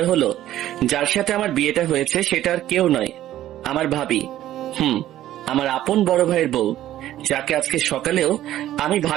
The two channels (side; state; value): left; quieter; 13.2 dB